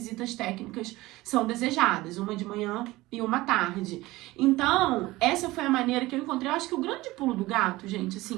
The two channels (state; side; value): quieter; left; 19.2 dB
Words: técnicas são desejadas, uma de manhã e uma à tarde. Então, essa foi a maneira que eu encontrei. Eu acho que o grande pulo do gato, gente,